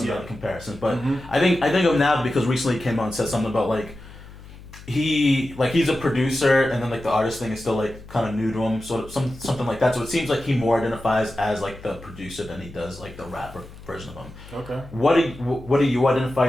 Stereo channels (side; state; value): left; noise; hum, 18 dB below the sound